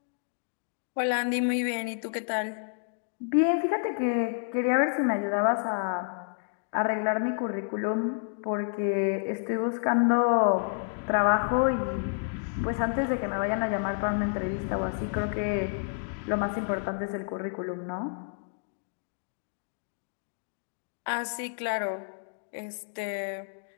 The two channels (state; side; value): silent; right; digital silence